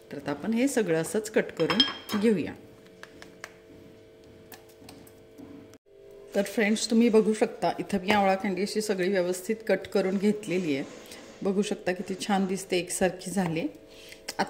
तर आता आपण हे सगळं असंच कट करून घेऊया. तर फ्रेंड्स, तुम्ही बघू शकता इथं मी आवळा कँडी अशी सगळी व्यवस्थित कट करून घेतलेली आहे. बघू शकता किती छान दिसते, एकसारखी झाली.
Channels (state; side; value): identical; both; correlation 1.00